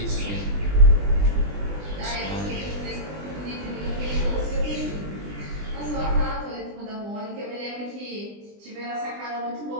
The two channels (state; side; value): late; left; 20 ms